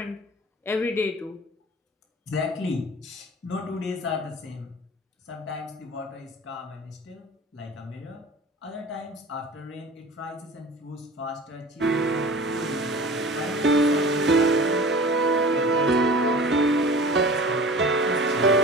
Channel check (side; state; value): both; normal; correlation 0.40